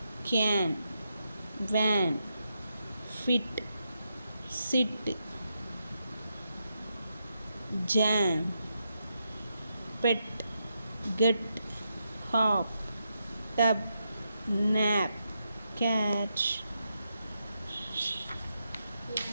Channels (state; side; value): inverted; both; correlation -0.84